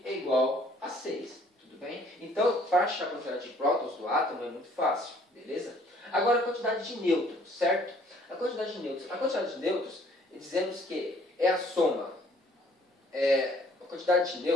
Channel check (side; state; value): both; normal; correlation 0.60